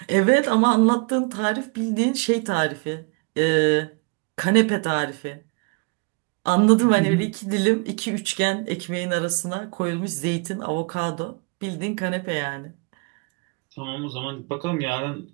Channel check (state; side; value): quieter; left; 32.2 dB